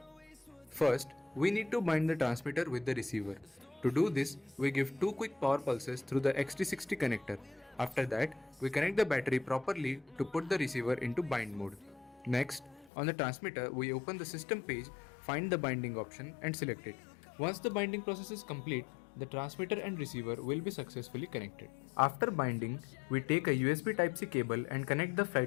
First, we need to bind the transmitter with the receiver. To do this, we give 2 quick power pulses through the XT60 connector. After that, we connect the battery properly to put the receiver into bind mode. Next, on the transmitter, we open the system page, find the binding option and select it. Once the binding process is complete, the transmitter and receiver will be successfully connected. After binding, we take a USB Type-C cable and connect the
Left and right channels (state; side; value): drops out; right; at 12.9 s